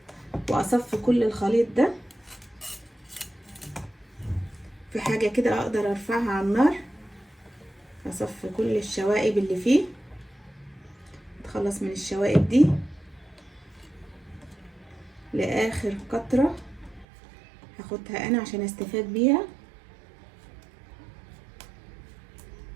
واصفي كل الخليط ده في حاجه كده اقدر ارفعها على النار. اصفي كل الشوائب اللي فيه، اتخلص من الشوائب دي لاخر قطره هاخدها انا عشان استفاد بيها.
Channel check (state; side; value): drops out; left; at 17.1 s